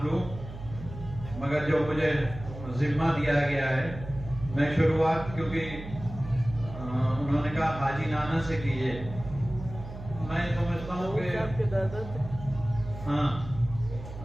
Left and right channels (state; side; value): noise; right; hum, 12 dB below the sound